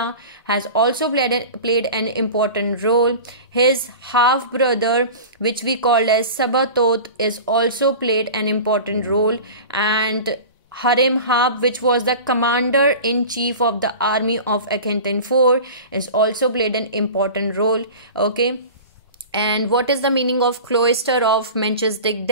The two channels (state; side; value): inverted; both; correlation -0.35